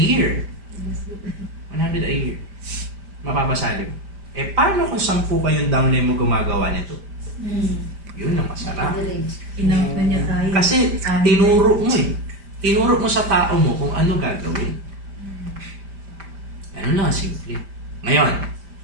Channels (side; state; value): left; late; 5.1 ms